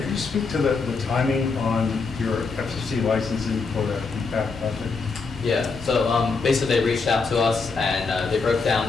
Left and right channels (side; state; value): right; quieter; 4.5 dB